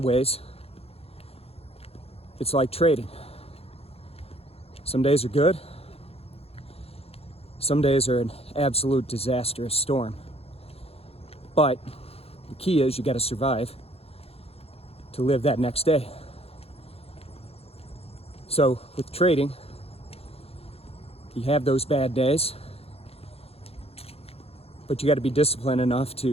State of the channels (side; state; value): right; late; 0.29 ms